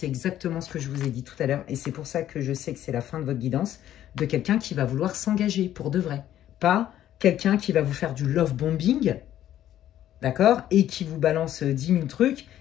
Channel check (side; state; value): right; quieter; 12.0 dB